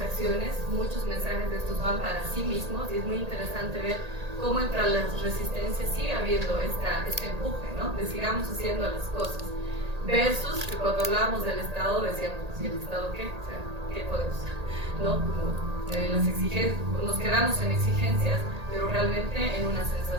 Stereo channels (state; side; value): late; left; 1.8 ms